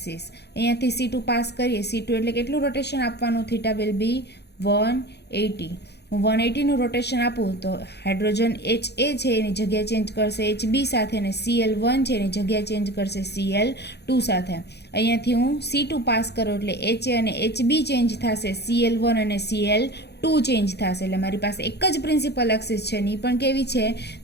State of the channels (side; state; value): right; late; 0.48 ms